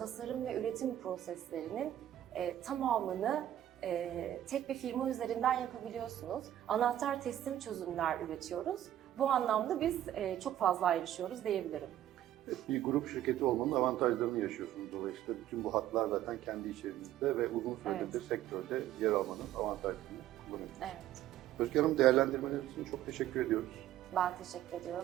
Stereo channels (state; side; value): quieter; left; 12.4 dB